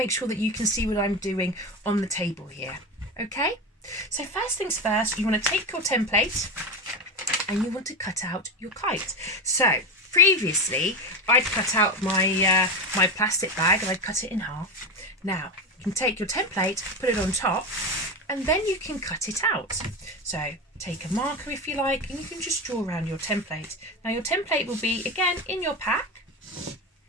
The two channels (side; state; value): both; normal; correlation 0.18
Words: sure that you can see what I'm doing on the table here. Okay, so first things first, you want to take your template and you want to cut out your kite. So previously I'd cut out my my plastic bag and I'd cut it in half. Now you can take your template, put it on top, and then you can cut it out. So take a marker if you like, and you can just draw around your template. Now your template will be again in your pack.